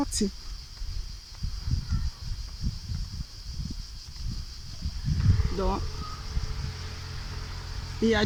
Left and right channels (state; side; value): identical; both; correlation 1.00